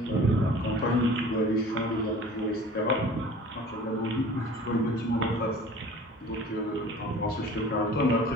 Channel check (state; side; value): normal; both; correlation 0.44